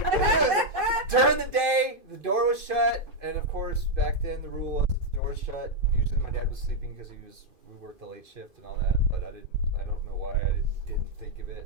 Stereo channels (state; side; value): late; left; 2.5 ms